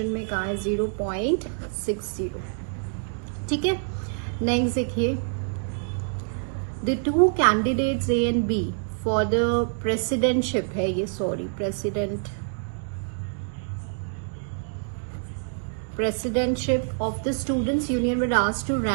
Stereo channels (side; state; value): left; silent; digital silence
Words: में कहाँ है, 0.60. ठीक है, नेक्स्ट देखिए. The two candidates A and B for the presidentship है ये, sorry presidentship of the students union were asked to